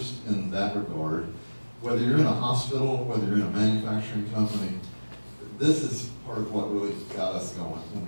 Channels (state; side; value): inverted; both; correlation -1.00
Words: in that regard, whether you're in a hospital, whether you're in a manufacturing company, this is part of what really got us going when